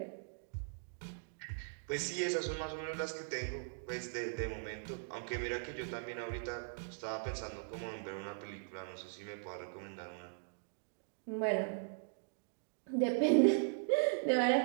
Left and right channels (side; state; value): left; silent; digital silence